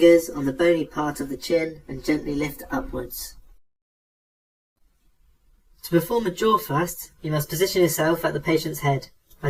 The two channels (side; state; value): both; identical; correlation 1.00